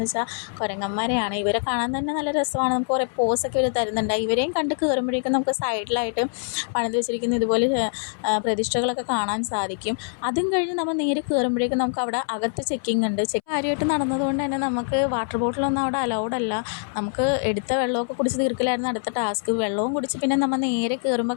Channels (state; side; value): silent; right; 62 dB below the other